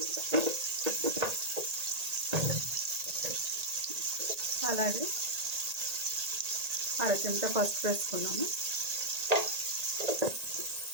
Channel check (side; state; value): left; late; 1.8 ms